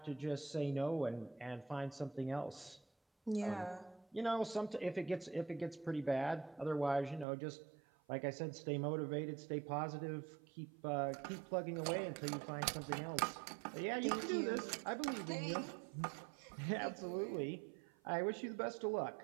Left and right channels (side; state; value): left; drops out; at 7.2 s